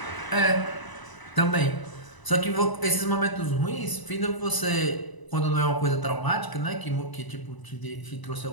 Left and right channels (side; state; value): right; late; 1.0 ms